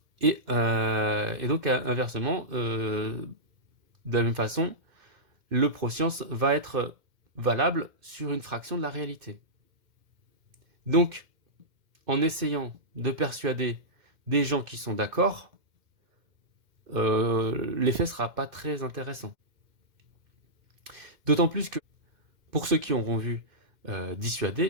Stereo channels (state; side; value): late; left; 2.1 ms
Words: Et donc, inversement, de la même façon, le pro-science va être valable sur une fraction de la réalité. Donc, en essayant de persuader des gens qui sont d'accord, l'effet ne sera pas très intéressant. D'autant plus que, pour ceux qui auront vu dissuader,